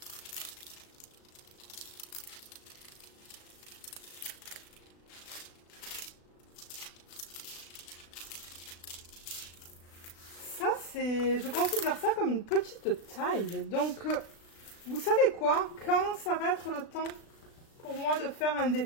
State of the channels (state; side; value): late; right; 36 ms